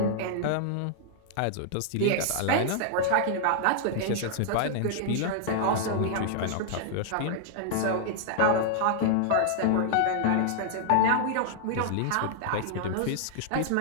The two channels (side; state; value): both; different; correlation -0.01